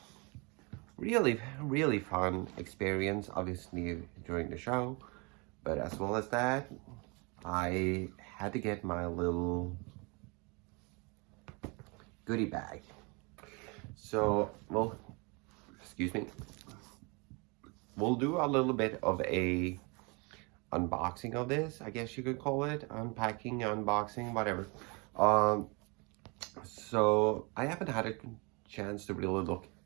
really fun experience. Obviously during the show, but as well as that, I had to get my little goodie bag. So, well, excuse me. We'll do a little bit of a unboxing of this, I guess you could call it. Unpacking, unboxing, whatever. Um, so I haven't had a chance to really look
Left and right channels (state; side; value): quieter; left; 29.9 dB